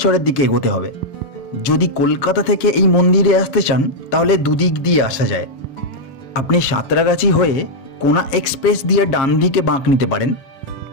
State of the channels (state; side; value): late; right; 7.4 ms